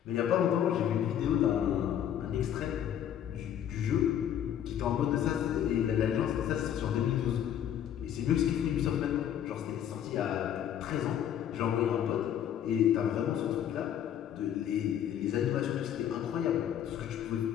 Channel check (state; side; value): quieter; right; 10.0 dB